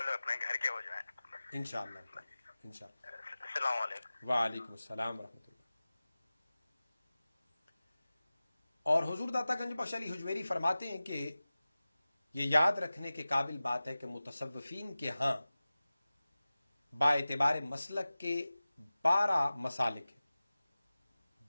لوگ اپنے گھر کے ہو جائیں۔ انشاءاللہ۔ السلام علیکم۔ وعلیکم السلام ورحمۃ اللہ۔ اور حضور داتا گنج بخش علی حجویری فرماتے ہیں کہ یہ یاد رکھنے کے قابل بات ہے کہ متصوفین کے ہاں با اعتبار مسلک کے 12 مسالک ہیں،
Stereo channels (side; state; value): both; inverted; correlation -0.97